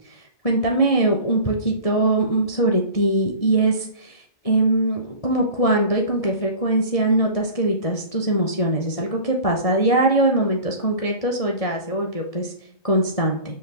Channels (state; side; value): late; right; 1.7 ms